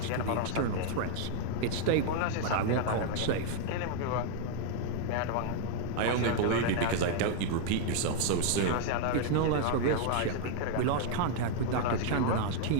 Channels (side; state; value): both; different; correlation 0.00